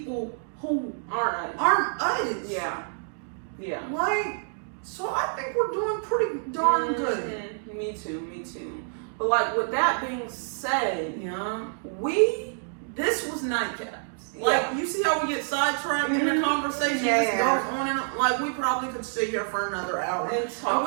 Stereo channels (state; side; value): silent; left; digital silence